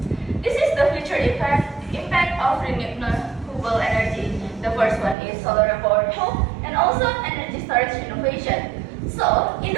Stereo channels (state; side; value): drops out; left; at 5.2 s